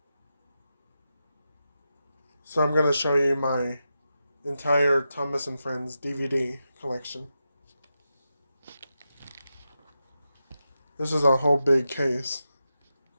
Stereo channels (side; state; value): both; inverted; correlation -0.89